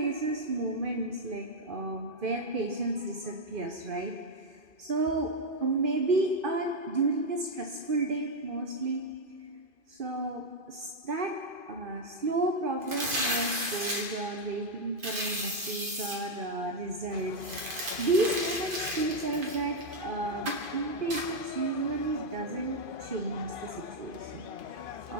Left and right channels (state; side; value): late; left; 2.5 ms